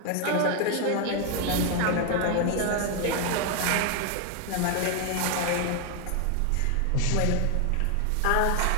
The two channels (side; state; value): both; different; correlation 0.01